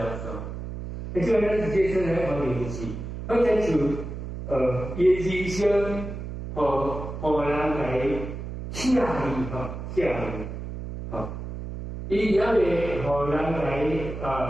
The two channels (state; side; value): noise; right; hum, 8 dB below the sound